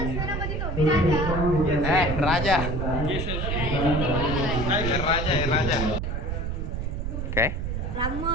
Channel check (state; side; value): noise; right; rumble, 2 dB below the sound